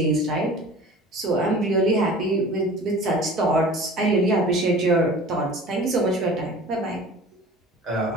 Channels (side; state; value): both; normal; correlation 0.42